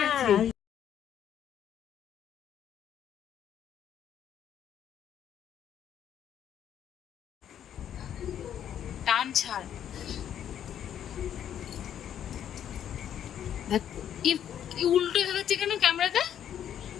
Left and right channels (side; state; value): right; quieter; 9.8 dB